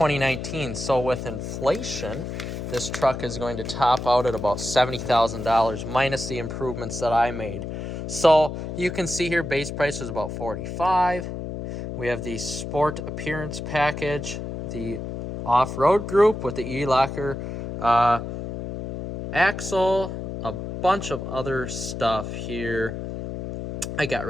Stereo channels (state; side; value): noise; left; hum, 6 dB below the sound